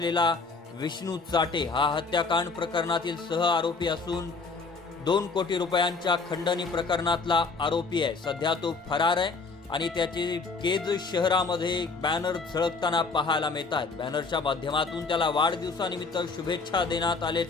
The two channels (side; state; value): right; quieter; 4.3 dB